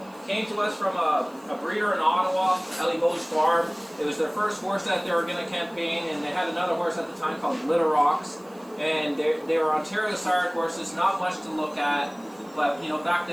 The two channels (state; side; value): noise; right; hiss, 28 dB below the sound